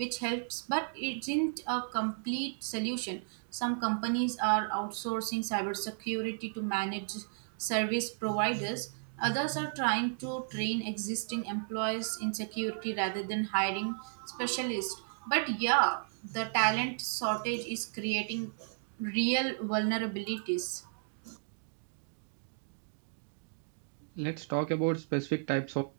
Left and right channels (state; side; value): silent; left; digital silence